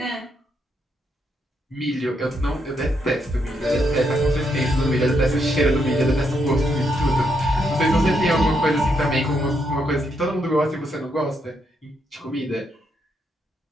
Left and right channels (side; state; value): both; normal; correlation 0.78